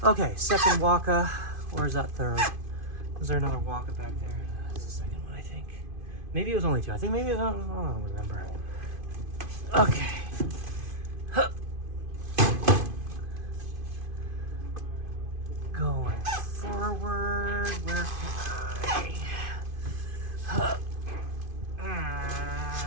Okay, second Waka. Or is that third? Was there another Waka back there? That's the second one, I think. Maybe it was only 2. I think maybe, I don't remember. Okay. Huh. Going forward. Where can I? Huh.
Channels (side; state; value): left; late; 2.5 ms